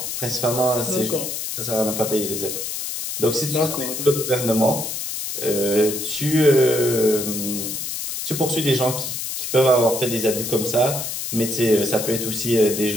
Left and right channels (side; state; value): left; noise; hiss, 5 dB below the sound